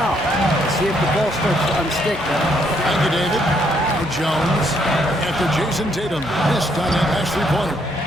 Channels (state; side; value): normal; both; correlation 0.71